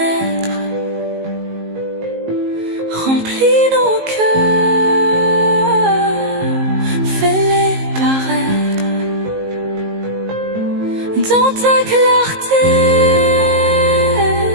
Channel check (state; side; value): late; left; 19 ms